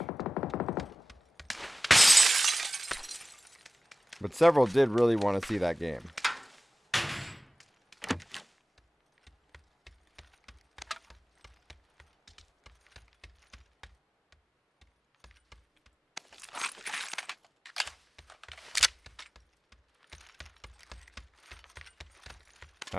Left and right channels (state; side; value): normal; both; correlation 0.97